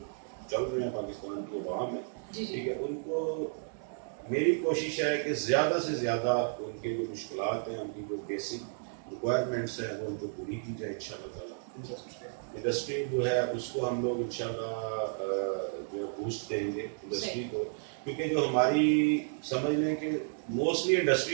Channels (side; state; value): left; silent; digital silence